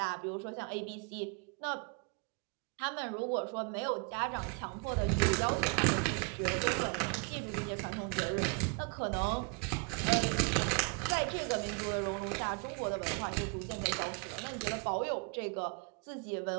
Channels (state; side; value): quieter; left; 34.8 dB